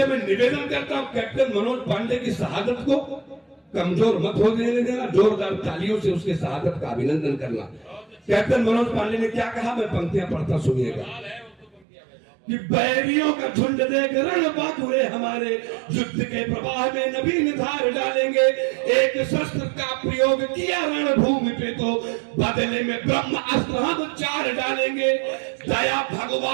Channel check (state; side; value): drops out; left; at 11.9 s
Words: मैं निवेदन करता हूं, कैप्टन मनोज पांडे की शहादत को कमजोर मत हो देना, जोरदार तालियों से उसके शहादत का अभिनंदन करना। कैप्टन मनोज पांडे ने क्या कहा, मैं पंक्तियां पढ़ता, सुनिएगा। कि बैरियों का झुंड देख रण बाकुरे हमारे, युद्ध के प्रवाह में नवीन धार डालेंगे। एक शस्त्र का प्रयोग किया रणभूमि पे, तो बदले में ब्रह्म अस्त्र हम 4 डालेंगे। दया